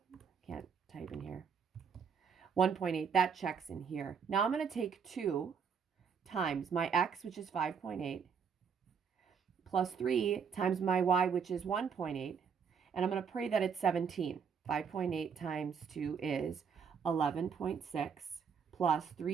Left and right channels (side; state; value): left; quieter; 6.6 dB